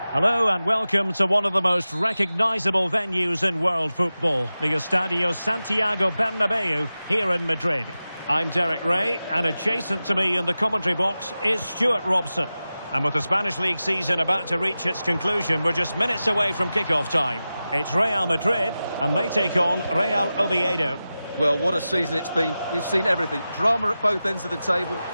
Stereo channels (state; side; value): inverted; both; correlation -0.94